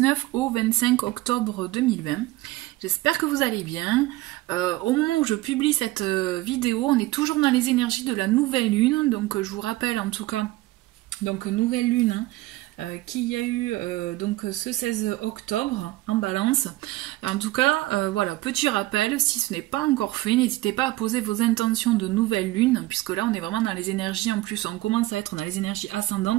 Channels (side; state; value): left; quieter; 18.5 dB